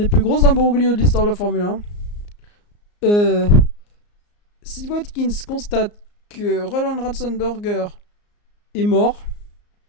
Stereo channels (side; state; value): right; late; 34 ms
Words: plus gros imbroglios de l'histoire de la Formule 1. Si Watkins constate que Roland Ratzenberger est mort,